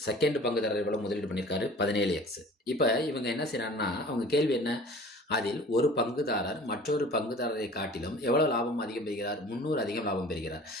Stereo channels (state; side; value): normal; both; correlation 0.45